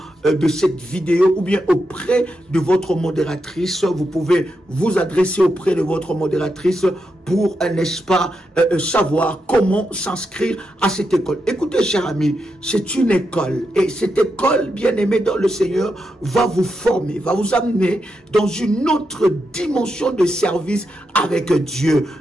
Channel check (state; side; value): normal; both; correlation 0.85